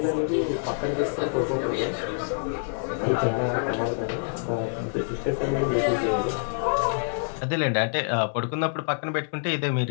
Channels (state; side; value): silent; right; digital silence